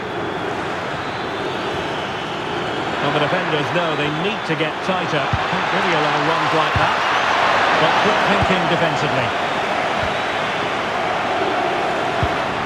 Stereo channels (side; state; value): both; identical; correlation 1.00